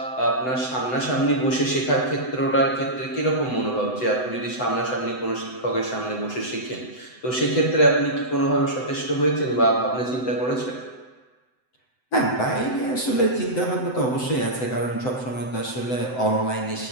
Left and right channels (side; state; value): right; late; 7.9 ms